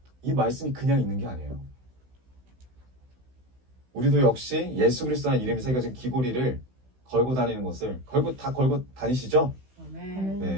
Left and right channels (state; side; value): late; left; 16 ms